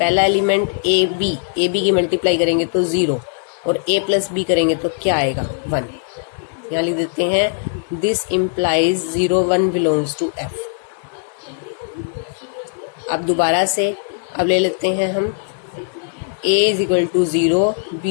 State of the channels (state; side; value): silent; right; digital silence